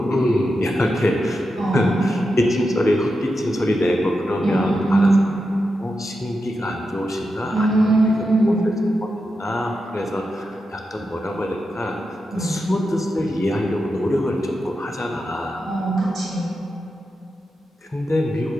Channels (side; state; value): both; normal; correlation 0.88